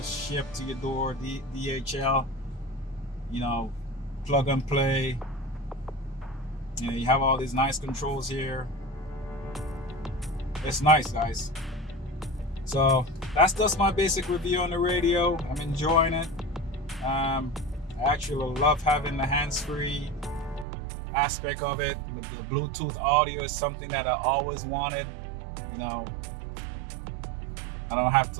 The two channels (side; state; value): left; drops out; at 20.7 s